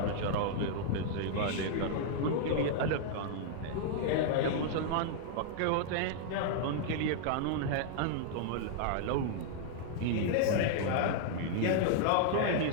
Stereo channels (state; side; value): different; both; correlation -0.01